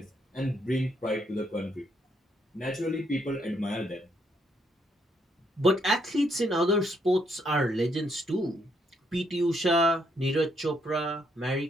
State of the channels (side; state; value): both; normal; correlation 0.74